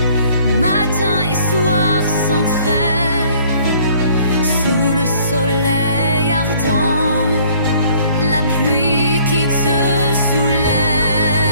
matin et soir sans trêve, sous le soleil ardent, la pluie qui te soulève.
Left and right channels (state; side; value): inverted; both; correlation -0.58